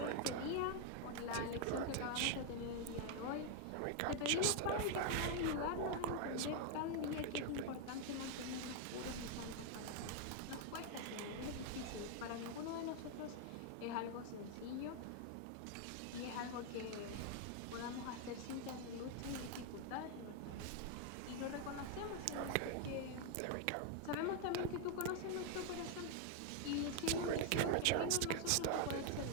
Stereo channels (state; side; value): different; both; correlation 0.01